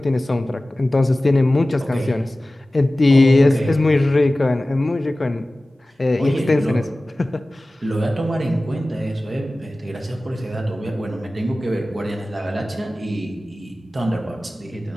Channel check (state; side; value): normal; both; correlation 0.97